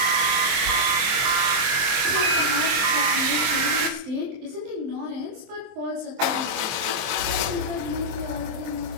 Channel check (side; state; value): left; late; 24 ms